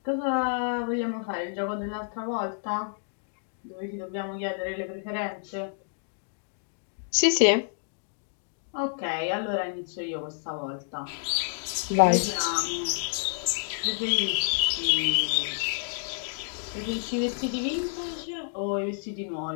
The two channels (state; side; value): silent; right; digital silence